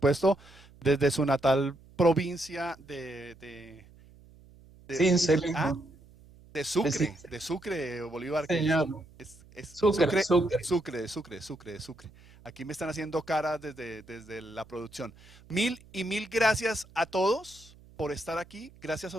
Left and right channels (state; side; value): noise; right; hum, 24 dB below the sound